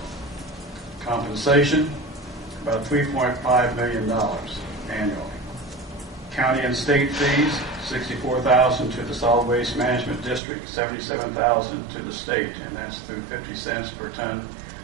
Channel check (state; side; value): drops out; left; at 10.4 s